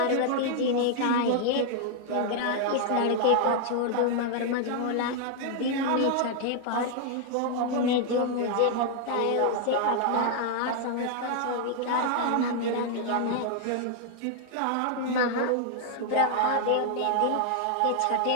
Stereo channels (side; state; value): both; different; correlation 0.00